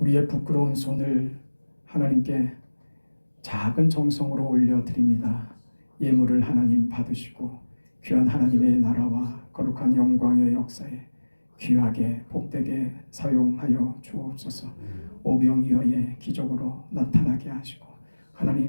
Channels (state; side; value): inverted; both; correlation -1.00